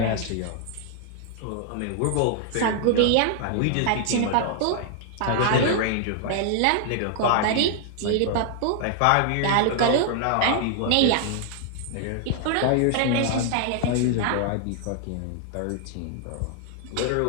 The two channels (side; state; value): both; different; correlation 0.00